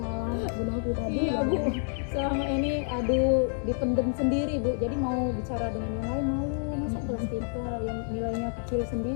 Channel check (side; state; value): right; silent; 59 dB below the other